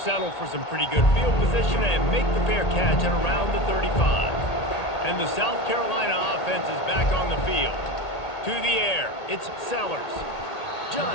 for some pretty good field position and make the fair catch at around the 35. And the South Carolina offense is back on the field. To the air, it's Sellers.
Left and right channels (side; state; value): right; late; 1.8 ms